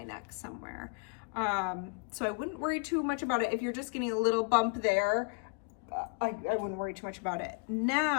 neck somewhere. So I wouldn't worry too much about it. If you're just getting a little bump there, I wouldn't worry too much about it.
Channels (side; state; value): right; quieter; 34.3 dB